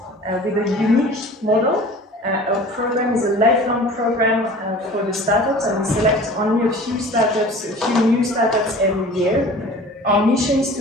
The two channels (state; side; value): normal; both; correlation 0.43